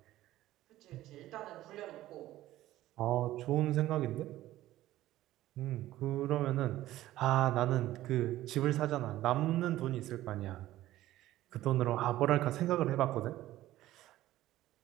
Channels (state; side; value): quieter; left; 15.0 dB